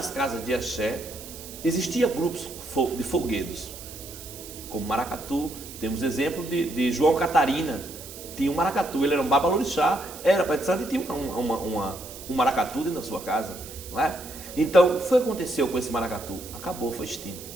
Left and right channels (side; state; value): right; noise; hiss, 14 dB below the sound